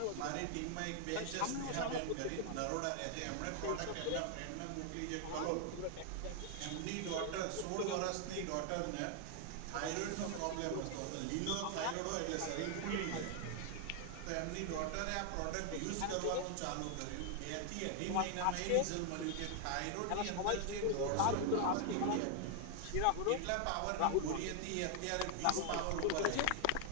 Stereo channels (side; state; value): both; different; correlation 0.00